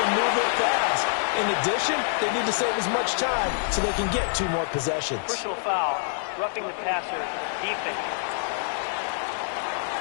and move it fast. In addition, they need to save as much time so they can get 2 more possessions. Personal foul, roughing the passer, defense.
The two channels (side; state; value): right; silent; digital silence